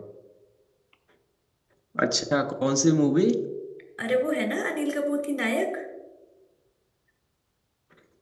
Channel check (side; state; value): both; identical; correlation 1.00